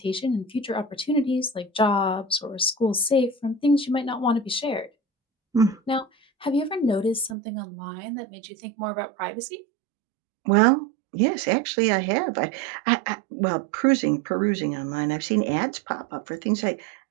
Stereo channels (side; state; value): left; drops out; at 7.4 s